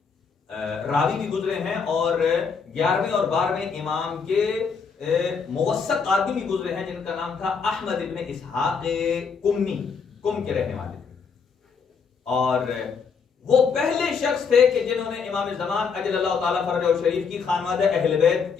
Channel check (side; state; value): right; quieter; 5.7 dB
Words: راوی بھی گزرے ہیں، اور 11ویں اور 12ویں امام کے موثق آدمی بھی گزرے ہیں جن کا نام تھا احمد ابن اسحاق کمی، کم کے رہنے والے تھے. اور وہ پہلے شخص تھے کہ جنہوں نے امام زمان اجل اللہ تعالیٰ فرجہ الشریف کی خانوادہ اہل بیت